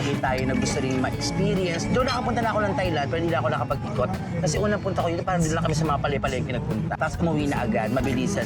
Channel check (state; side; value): identical; both; correlation 1.00